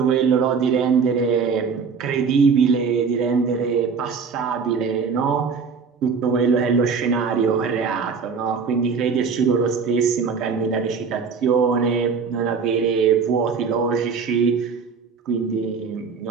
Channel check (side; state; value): left; quieter; 5.6 dB